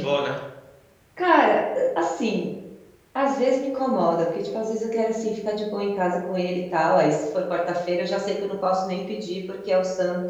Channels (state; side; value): identical; both; correlation 1.00